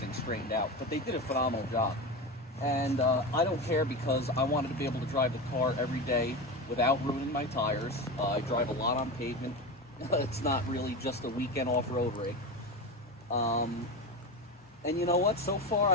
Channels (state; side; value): normal; both; correlation 0.22